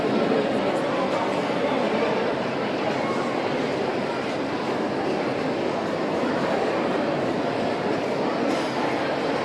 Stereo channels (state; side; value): identical; both; correlation 1.00